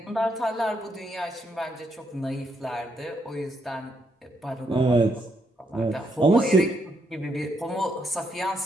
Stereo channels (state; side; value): normal; both; correlation 0.77